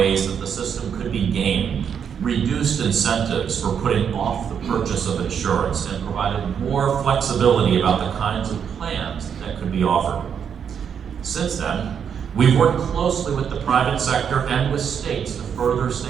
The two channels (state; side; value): quieter; left; 7.6 dB